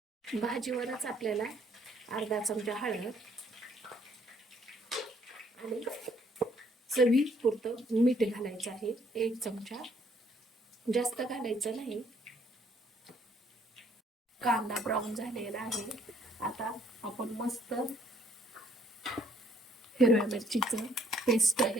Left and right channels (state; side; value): normal; both; correlation 0.65